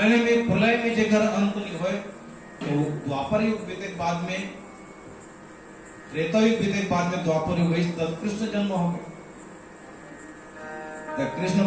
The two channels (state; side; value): identical; both; correlation 1.00